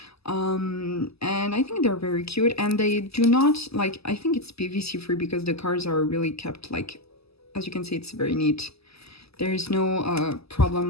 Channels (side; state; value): right; late; 0.78 ms